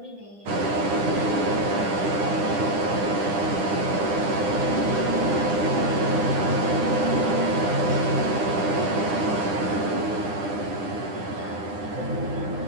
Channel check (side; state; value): left; late; 9.9 ms